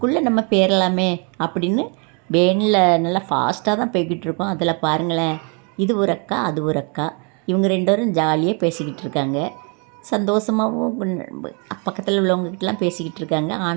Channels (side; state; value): left; quieter; 36.3 dB